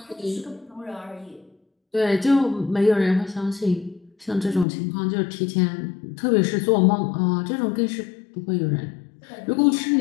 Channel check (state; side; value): drops out; right; at 4.7 s